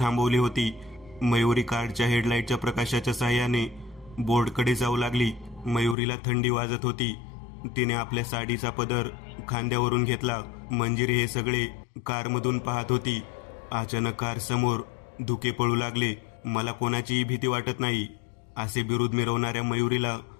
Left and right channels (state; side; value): drops out; right; at 6.0 s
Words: होती. मयुरी कारच्या हेडलाईटच्या प्रकाशाच्या साहाय्याने बोर्डकडे जाऊ लागली. मयुरीला थंडी वाजत होती. तिने आपल्या साडीचा पदर खांद्यावरून घेतला. मंजिरी हे सगळे कारमधून पाहत होती. अचानक कार समोर धुके पळू लागले. मला कोणाचीही भीती वाटत नाही, असे बिरुद मिरवणाऱ्या मयुरीला